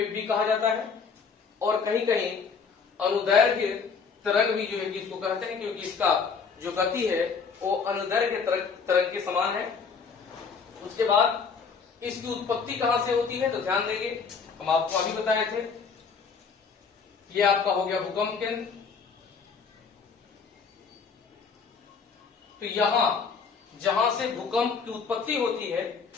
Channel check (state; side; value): quieter; right; 5.6 dB